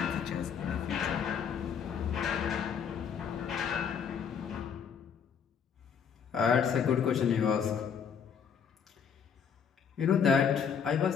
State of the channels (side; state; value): right; quieter; 7.1 dB